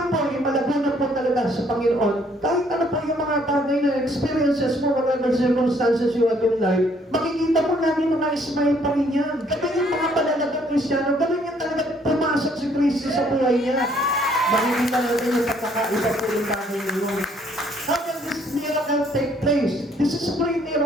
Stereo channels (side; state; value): both; normal; correlation 0.65